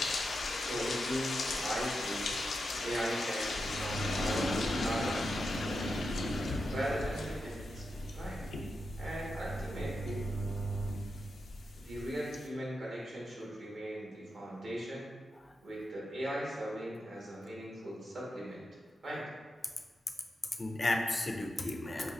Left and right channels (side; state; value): both; normal; correlation 0.88